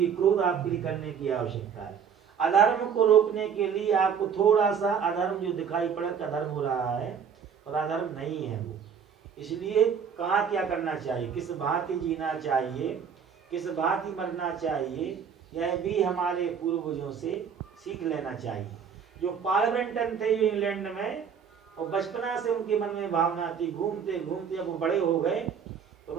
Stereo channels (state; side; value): quieter; left; 7.2 dB